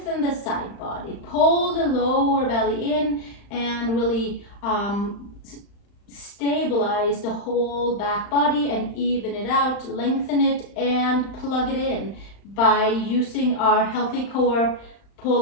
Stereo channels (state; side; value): late; right; 35 ms